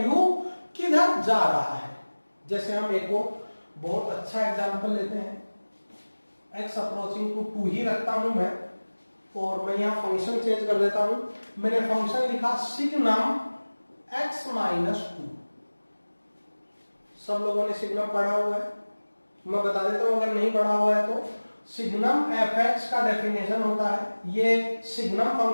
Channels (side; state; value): both; inverted; correlation -1.00